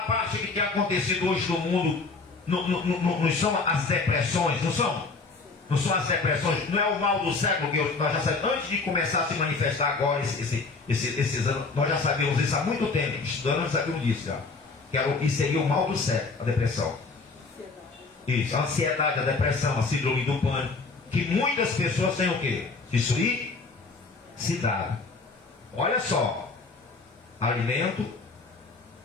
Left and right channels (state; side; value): quieter; right; 4.1 dB